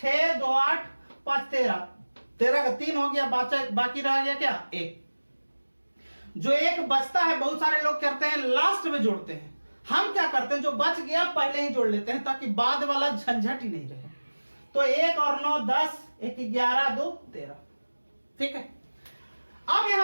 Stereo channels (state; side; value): inverted; both; correlation -1.00